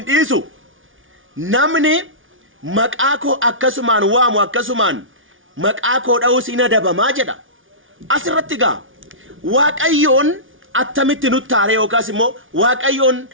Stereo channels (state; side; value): late; left; 0.57 ms